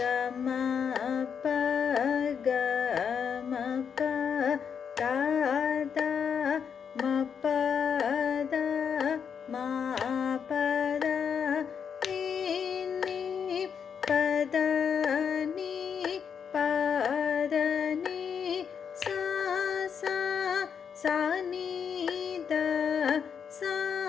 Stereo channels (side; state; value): right; quieter; 7.1 dB